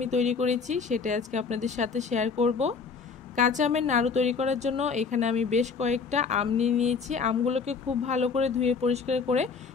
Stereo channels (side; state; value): right; quieter; 5.3 dB